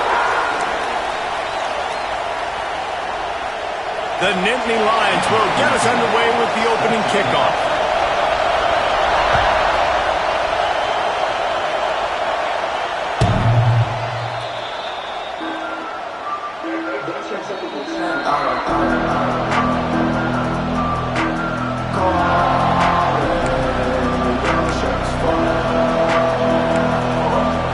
The Nittany Lions will get us underway with the opening kickoff.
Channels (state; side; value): identical; both; correlation 1.00